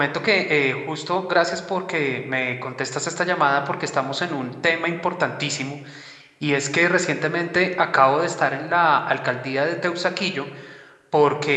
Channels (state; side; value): identical; both; correlation 1.00